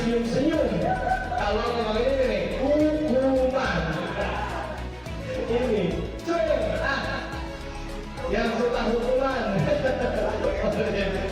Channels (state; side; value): identical; both; correlation 1.00